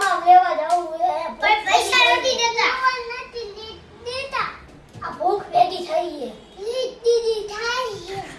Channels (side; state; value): both; identical; correlation 1.00